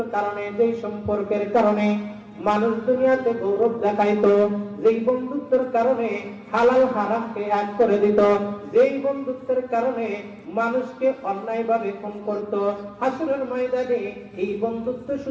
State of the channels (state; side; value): identical; both; correlation 1.00